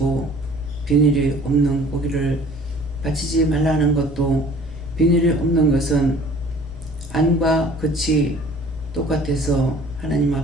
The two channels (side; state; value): both; normal; correlation 0.50